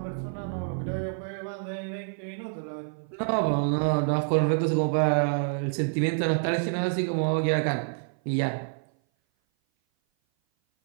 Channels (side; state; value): left; silent; 57 dB below the other